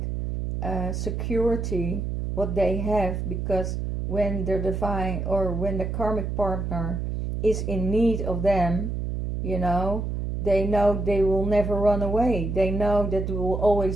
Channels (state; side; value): noise; right; hum, 3 dB below the sound